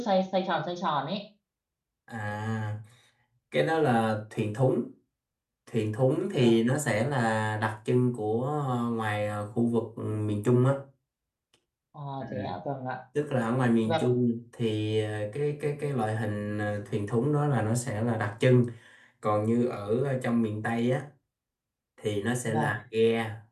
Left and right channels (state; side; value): identical; both; correlation 1.00